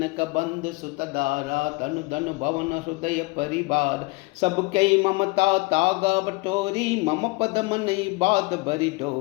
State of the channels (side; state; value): right; quieter; 25.1 dB